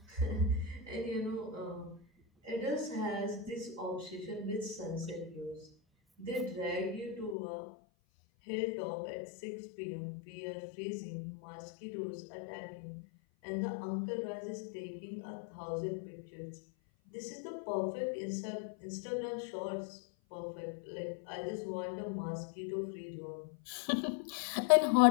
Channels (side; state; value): right; drops out; at 7.4 s